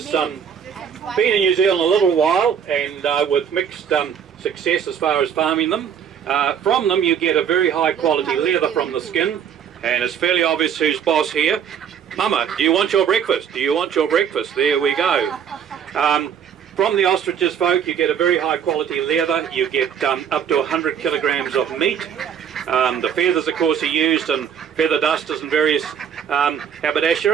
been in New Zealand a little while, and with mixed success as far as farming them. From them you get a very high quality leather from the skin, and it's fairly obvious who's boss here. Mama, do you want your breakfast? Do you want your breakfast? There we go. From the ostriches, folk, you get a very high quality leather. You get up to 100 kilograms of meat. The feathers, of course, are used in feather dusters and various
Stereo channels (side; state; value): left; quieter; 8.1 dB